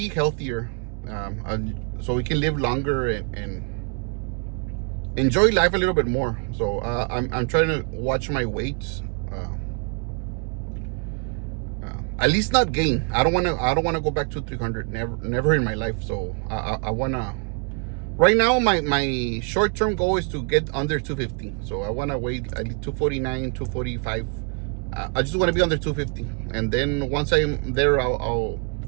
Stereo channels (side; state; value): left; quieter; 37.9 dB